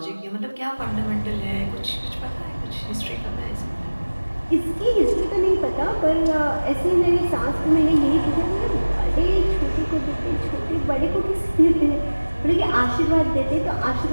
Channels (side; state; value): both; inverted; correlation -1.00